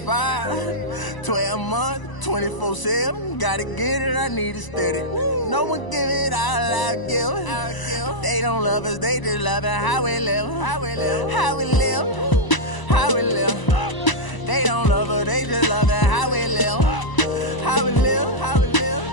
12 months, 24/7. Gotta get it, I need it steady. No one give it all I give. They don't love us, they just love it how we live. How we live, how we live, how we live. They don't love us, they just love it how we live. How we live, how we live,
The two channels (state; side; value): late; right; 1.0 ms